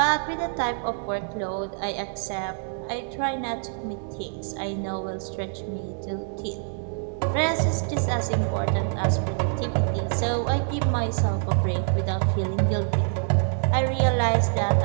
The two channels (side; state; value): left; silent; 61 dB below the other